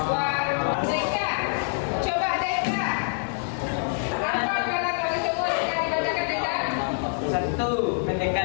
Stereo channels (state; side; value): silent; right; 61 dB below the other